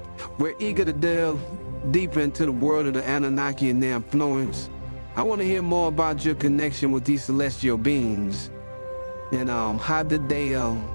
we're eager to delve deeper into the world of the Anunnaki and their influence. I want to hear more about your connection with these celestial beings. And how did they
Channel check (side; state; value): both; inverted; correlation -1.00